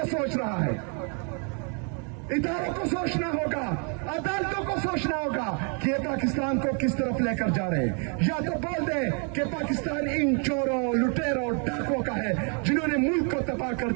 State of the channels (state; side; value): quieter; left; 38.6 dB